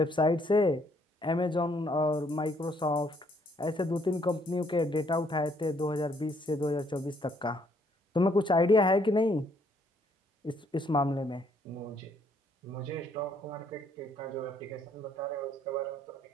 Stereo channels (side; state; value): both; normal; correlation 0.68